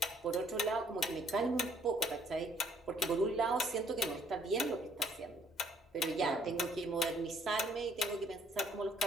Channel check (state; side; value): normal; both; correlation 0.64